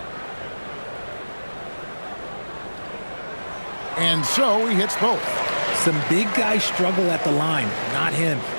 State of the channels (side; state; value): both; inverted; correlation -1.00